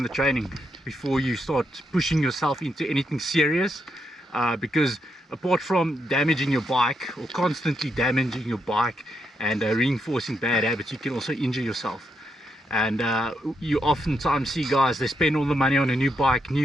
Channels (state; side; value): normal; both; correlation 0.81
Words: training before you start pushing yourself into anything serious, because apart from damaging your bike or constantly damaging your bike and reinforcing bad habits, you can also injure yourself. And you oftentimes see guys, they spend all the money on a new bike,